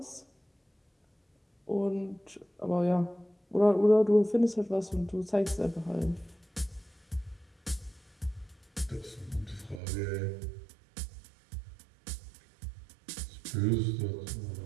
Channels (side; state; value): left; drops out; at 9.8 s